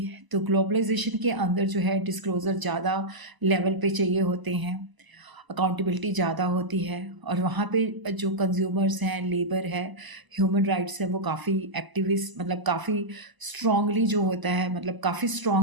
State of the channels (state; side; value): late; left; 1.0 ms